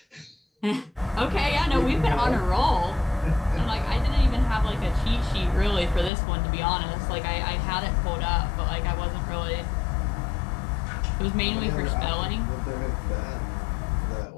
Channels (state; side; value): drops out; right; at 6.1 s